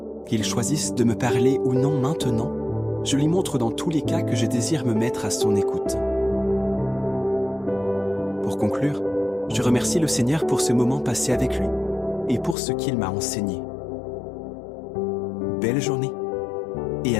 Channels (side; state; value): right; drops out; at 12.6 s